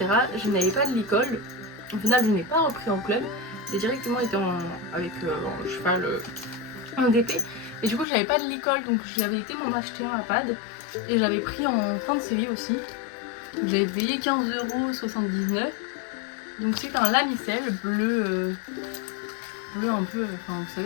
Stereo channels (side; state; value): right; drops out; at 8.1 s